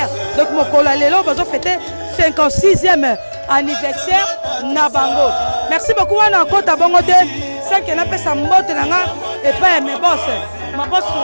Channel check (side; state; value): both; inverted; correlation -1.00